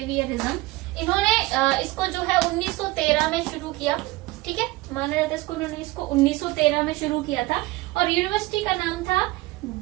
इन्होंने इसको जो है 1913 में शुरू किया। ठीक है, माना जाता है इसको, उन्होंने इसको 1913 में शुरू किया था, और यूनिवर्सिटी का नाम था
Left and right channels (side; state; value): left; quieter; 20.4 dB